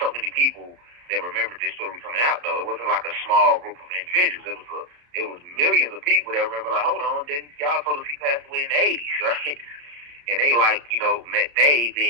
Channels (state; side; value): late; left; 34 ms